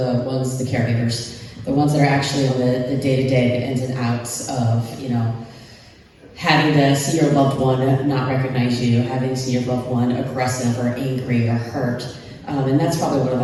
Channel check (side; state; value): both; identical; correlation 1.00